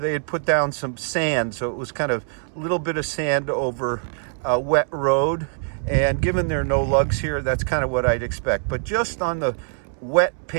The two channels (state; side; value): silent; left; 63 dB below the other